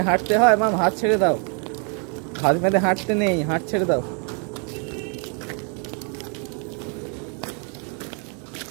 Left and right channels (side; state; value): left; quieter; 38.8 dB